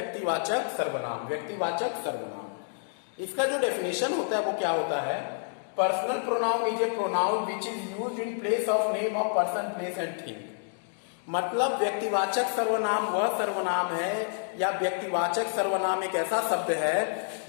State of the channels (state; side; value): silent; right; digital silence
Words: सर्वनाम। व्यक्तिवाचक सर्वनाम, इसका जो डेफिनेशन होता है वो क्या होता है। Personal pronoun is A pronoun which is used in place of name of person, place and thing. मतलब व्यक्तिवाचक सर्वनाम वह सर्वनाम है या व्यक्तिवाचक सर्वनाम एक ऐसा शब्द